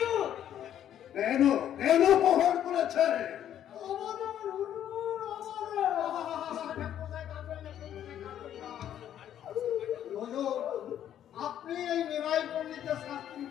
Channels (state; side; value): quieter; right; 10.6 dB